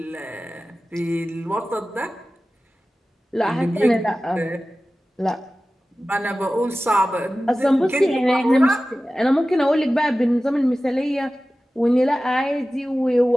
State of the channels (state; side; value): normal; both; correlation 0.96